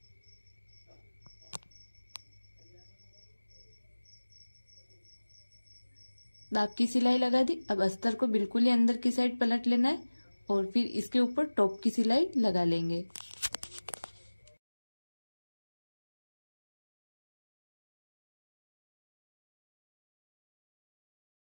दाब की सिलाई लगा दी। अब अस्तर को बिल्कुल ही अंदर की साइड पलट लेना है और फिर इसके ऊपर टॉप की सिलाई लगा लेंगे।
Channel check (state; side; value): inverted; both; correlation -1.00